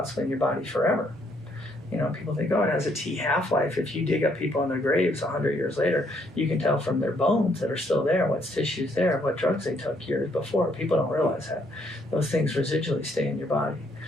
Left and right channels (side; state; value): both; normal; correlation 0.70